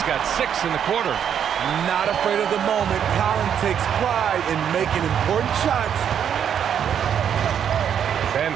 got 6 in the quarter. Not afraid of the moment. Collins takes pride in making important shots. Van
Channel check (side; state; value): left; quieter; 8.6 dB